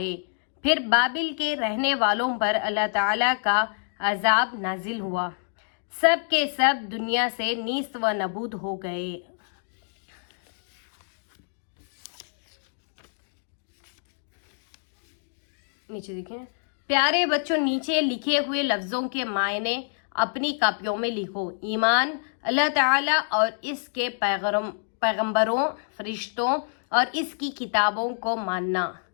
پھر بابل کے رہنے والوں پر اللہ تعالیٰ کا عذاب نازل ہوا، سب کے سب دنیا سے نیست و نابود ہو گئے۔ نیچے دیکھیں، پیارے بچوں، نیچے لکھے ہوئے لفظوں کے معنی اپنی کاپیوں میں لکھو۔ ایمان، اللہ تعالیٰ اور اس کے پیغمبروں، فرشتوں اور اس کی کتابوں کو ماننا۔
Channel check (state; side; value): silent; right; digital silence